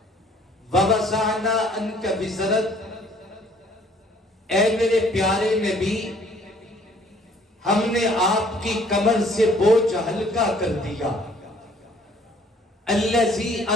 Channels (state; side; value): normal; both; correlation 0.59